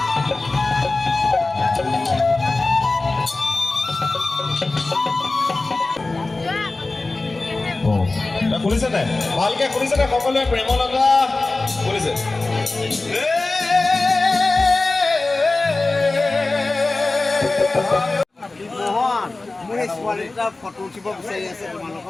শুনিছে নাই ভালকে শুনিছে নাই সকলোৱে প্ৰেমৰ লগা শুনিছে ফটো উঠিব বিচাৰি আছে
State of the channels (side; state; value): right; quieter; 3.3 dB